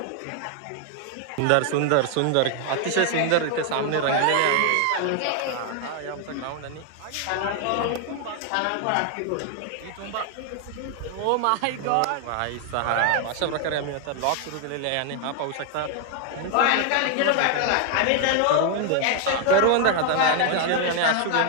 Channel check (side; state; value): both; different; correlation 0.00